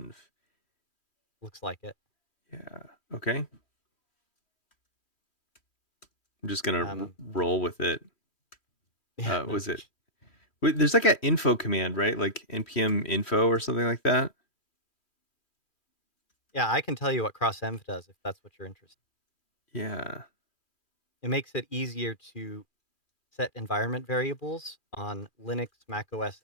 looks like it. Yeah. Okay. I'm just gonna roll with it. Yeah, no, Was it? There's like an info command, right? Like npm info or something like that. yeah, I can tell you what crossenv does if that's what you're interested Yeah. in. It makes it easier to set environment variables on Linux, Mac OS,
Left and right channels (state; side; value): late; right; 3.1 ms